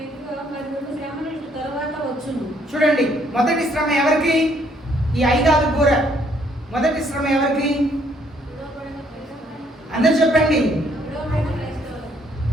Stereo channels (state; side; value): normal; both; correlation 0.67